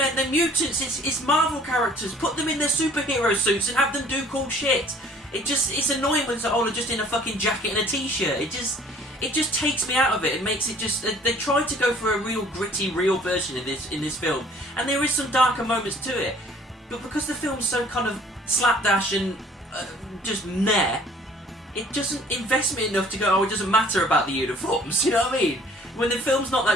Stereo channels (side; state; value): both; normal; correlation 0.54